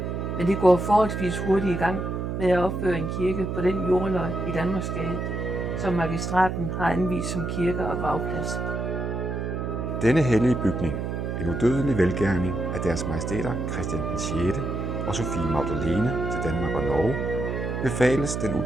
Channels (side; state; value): right; noise; hum, 3 dB below the sound